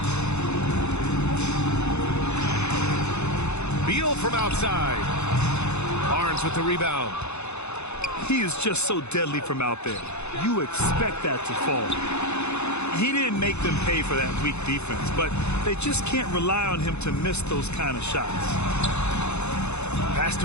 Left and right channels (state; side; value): late; right; 0.81 ms